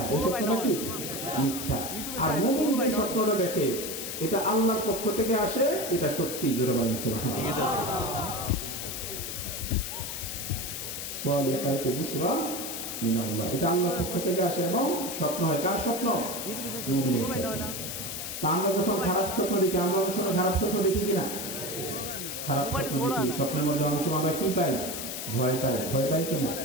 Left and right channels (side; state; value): left; noise; hiss, 5 dB below the sound